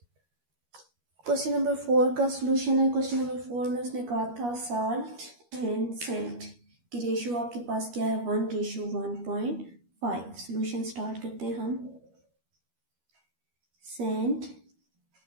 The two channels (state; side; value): late; left; 13 ms